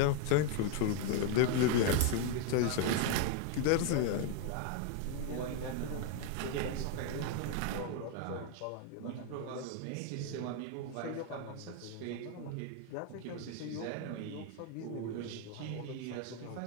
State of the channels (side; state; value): both; different; correlation 0.01